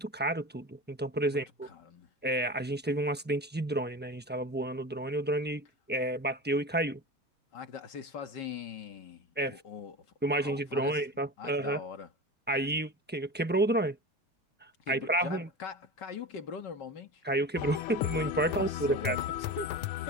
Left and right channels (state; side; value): normal; both; correlation 0.29